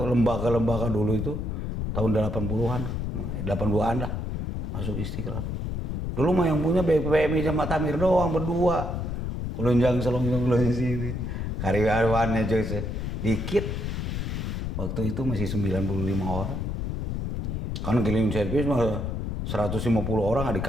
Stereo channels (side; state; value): left; noise; rumble, 2 dB below the sound